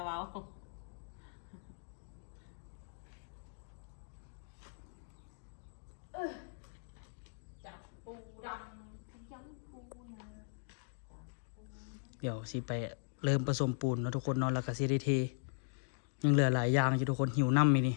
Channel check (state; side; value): silent; right; digital silence